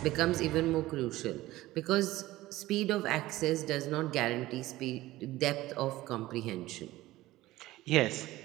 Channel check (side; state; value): left; quieter; 17.1 dB